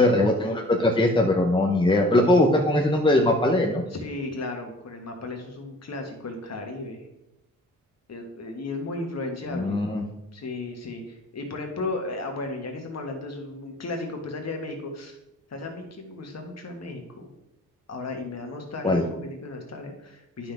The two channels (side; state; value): both; normal; correlation 0.50